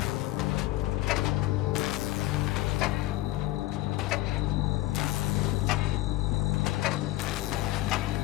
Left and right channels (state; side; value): quieter; right; 16.9 dB